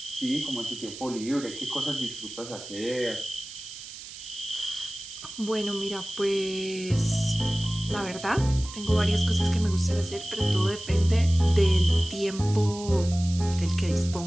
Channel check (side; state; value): right; noise; hiss, 13 dB below the sound